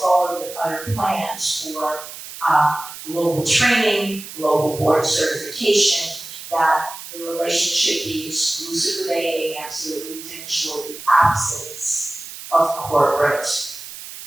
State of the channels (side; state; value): right; noise; hiss, 13 dB below the sound